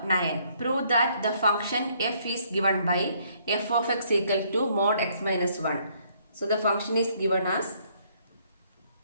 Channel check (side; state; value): both; inverted; correlation -0.66